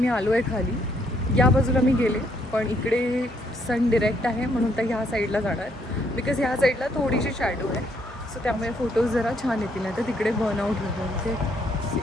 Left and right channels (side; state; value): both; normal; correlation 0.71